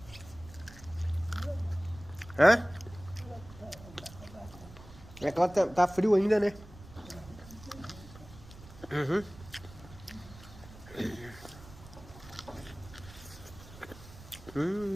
Hã? É que ela tá frio ainda, né? Uhum.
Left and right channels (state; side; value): noise; right; rumble, 18 dB below the sound